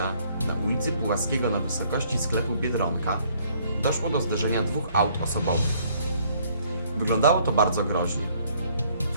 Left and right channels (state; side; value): inverted; both; correlation -0.63